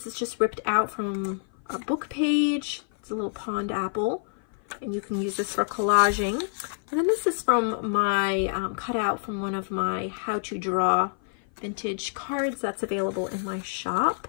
is just ripped out from a book page. It's a little pond apple, and you can use this for collaging. And then this is from my cutout from one of my how to draw vintage cards that's available in my shop.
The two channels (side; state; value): right; silent; 55 dB below the other